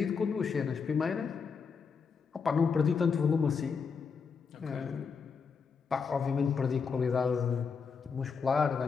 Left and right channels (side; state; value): right; quieter; 5.7 dB